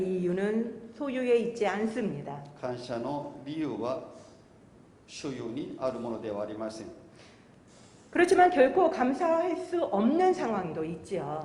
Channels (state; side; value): identical; both; correlation 1.00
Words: 이유는 소유에 있지 않습니다. 感謝の理由は所有にあるものではありません。 그렇지만 결코 감사할 수 없는 상황도